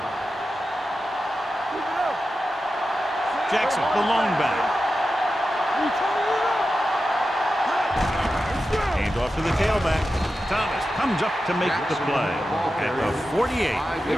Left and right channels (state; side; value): normal; both; correlation 0.92